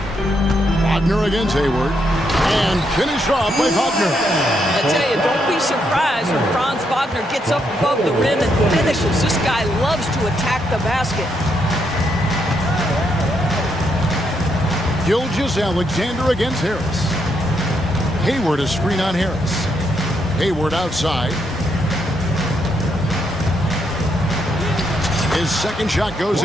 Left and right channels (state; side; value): normal; both; correlation 0.77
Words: Wagner against Hayward. And finished off by Wagner. I tell you, don't be surprised when Franz Wagner gets up above the rim and finishes. This guy loves to attack the basket. Gilgeous-Alexander against Harris. Hayward a screen on Harris. Hayward outside. His second shot goes